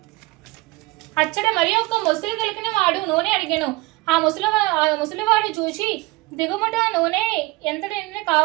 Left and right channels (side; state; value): left; quieter; 21.7 dB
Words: అచ్చట మరి ఒక్క ముసలి తెలికిన వాడు నూనె అడిగాను. ఆ ముసలివాడు చూసి, దిగుమట నూనె ఎంతటి